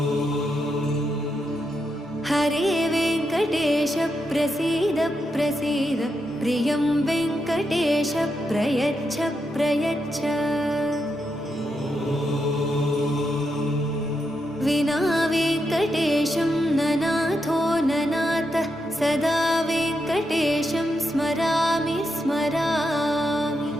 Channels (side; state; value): both; normal; correlation 0.84